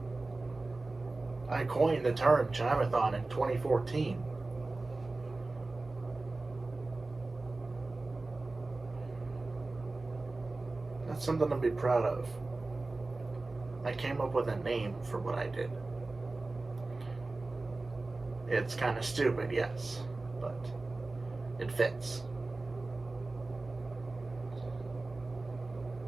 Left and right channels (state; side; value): quieter; left; 3.3 dB